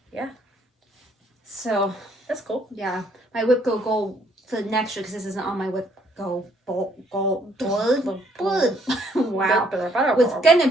Yeah. So, That's cool. yeah. My WIP Go goal for next year, because this isn't on my WIP Go board. Wow. Was gonna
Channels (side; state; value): both; normal; correlation 0.67